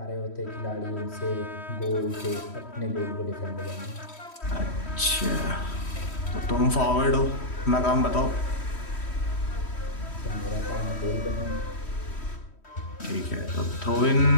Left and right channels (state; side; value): late; right; 3.1 ms